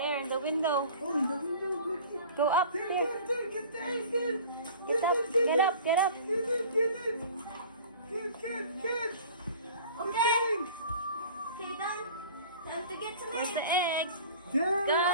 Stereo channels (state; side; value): inverted; both; correlation -0.44